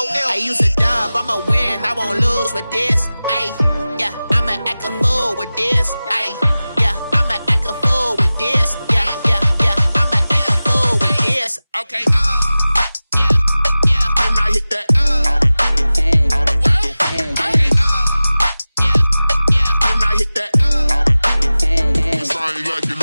L. I use a dub, I'ma win, I won't lose with this. Yeah, I'ma act a fool with this. Yeah, I'ma act a fool with this. Yeah, I'ma act a fool with this. Okay, yeah, when I hit that. Okay, yeah, when I hit that. Cause I ain't like it,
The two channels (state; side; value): inverted; both; correlation -0.97